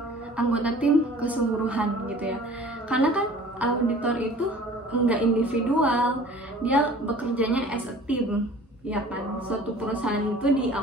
anggota tim keseluruhan gitu ya, karena kan auditor itu enggak individual, dia bekerjanya as a team ya kan. Suatu perusahaan itu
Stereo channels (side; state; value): both; normal; correlation 0.47